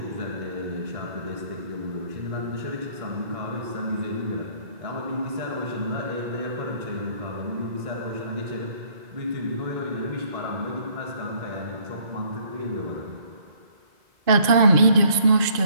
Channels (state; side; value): late; left; 2.5 ms